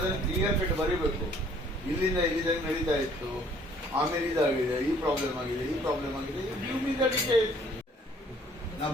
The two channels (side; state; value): both; normal; correlation 0.59